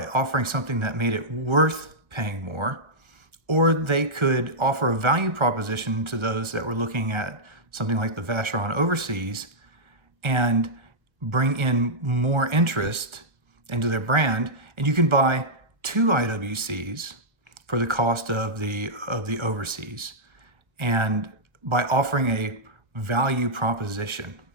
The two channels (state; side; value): late; left; 1.3 ms